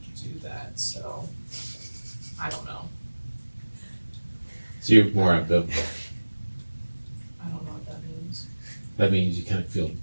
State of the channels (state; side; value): inverted; both; correlation -1.00